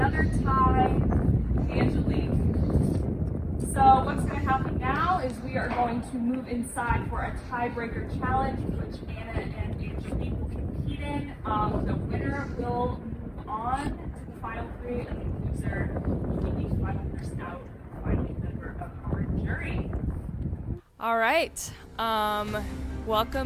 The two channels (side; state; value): both; identical; correlation 1.00